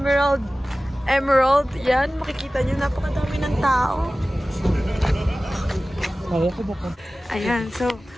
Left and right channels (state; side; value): normal; both; correlation 0.97